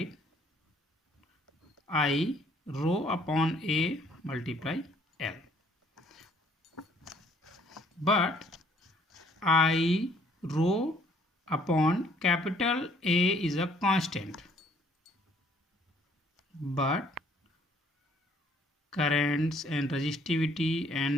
I rho upon A multiply L, but I rho upon capital A is a constant, but currents and resistivity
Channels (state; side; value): normal; both; correlation 0.62